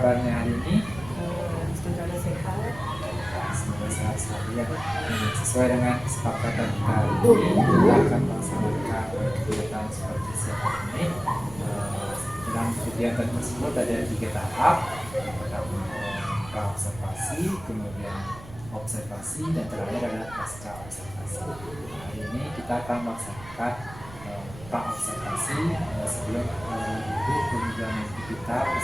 hari ini? Semoga sehat. Semoga sehat selalu ya. Sesuai dengan kesepakatan kita hari ini, kita akan melaksanakan kegiatan seperti siapa ini. Dalam kegiatan tersebut ada 3 tahap. Pertama pra-observasi, kemudian observasi, dan terakhir adalah pasca observasi. Hari ini kita akan melaksanakan pra-observasi sebelum ibu kemudian kita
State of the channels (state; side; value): noise; right; rumble, 16 dB below the sound